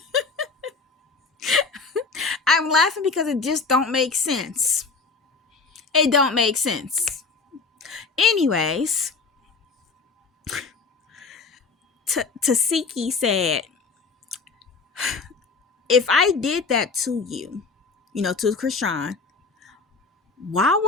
I'm laughing because it just don't make sense. It don't make sense. Anyways, Tesehki said, if I did that to you, to Krishan, why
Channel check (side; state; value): right; quieter; 4.4 dB